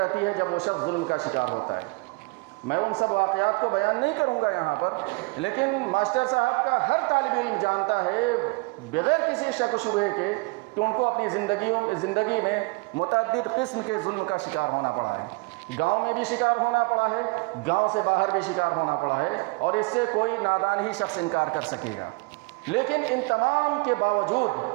ہے جب وہ شخص ظلم کا شکار ہوتا ہے. میں ان سب واقعات کو بیان نہیں کروں گا یہاں پر، لیکن ماسٹر صاحب کا ہر طالب علم جانتا ہے بغیر کسی شک و شبہے کے کہ ان کو اپنی زندگی میں متعدد قسم کے ظلم کا شکار ہونا پڑا ہے. گاؤں میں بھی شکار ہونا پڑا ہے، گاؤں سے باہر بھی شکار ہونا پڑا ہے، اور اس سے کوئی نادان ہی شخص انکار کر سکے گا. لیکن ان تمام کے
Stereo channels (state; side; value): quieter; left; 27.5 dB